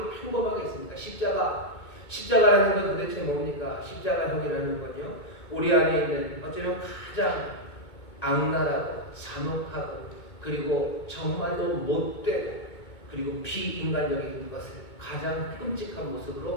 평범하게 있습니다. 십자가라는 건 도대체 뭡니까? 십자가형이라는 건요, 우리 안에 있는 어쩌면 가장 악랄하고 잔혹하고 그리고 정말로 못되고 그리고 비인간적인 것을 가장 끔찍한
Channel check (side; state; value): right; late; 2.2 ms